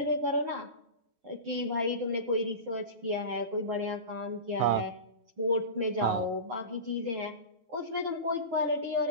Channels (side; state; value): left; late; 8.8 ms